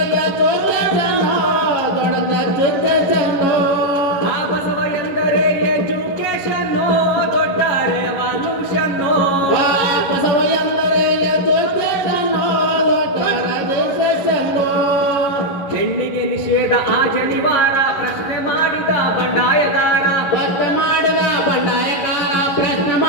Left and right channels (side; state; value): right; late; 11 ms